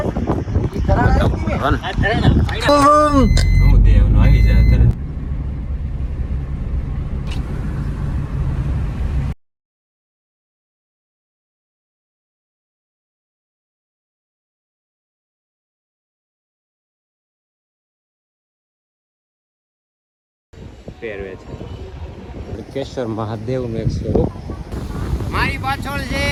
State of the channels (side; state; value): both; identical; correlation 1.00